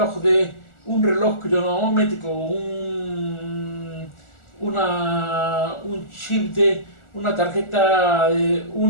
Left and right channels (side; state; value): right; late; 1.4 ms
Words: Un reloj cronométrico, un chip de una tarjeta,